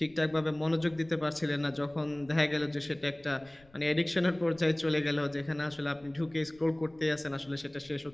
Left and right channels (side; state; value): left; noise; rumble, 28 dB below the sound